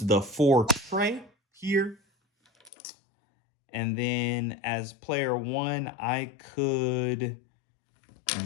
4 tray here. And then as player one, I could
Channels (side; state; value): right; drops out; at 2.7 s